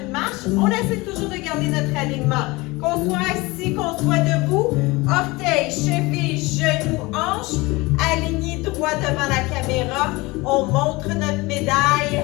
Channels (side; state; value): right; quieter; 22.9 dB